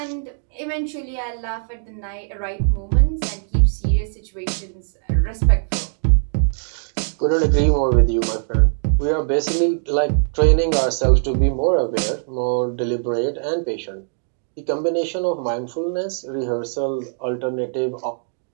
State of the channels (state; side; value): silent; left; digital silence